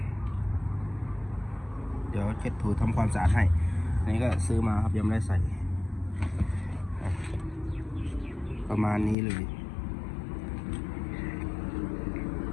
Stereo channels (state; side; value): drops out; right; at 9.2 s